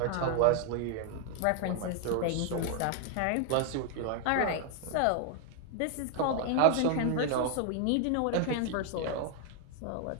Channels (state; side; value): different; both; correlation 0.00